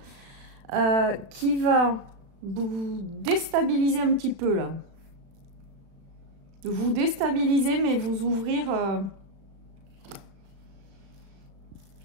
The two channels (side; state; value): left; late; 36 ms